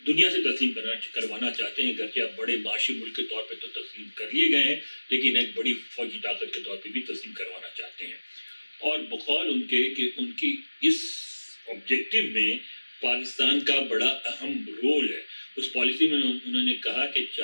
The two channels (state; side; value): inverted; both; correlation -1.00